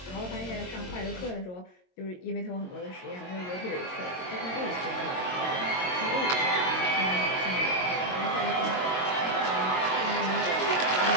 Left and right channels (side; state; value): right; late; 22 ms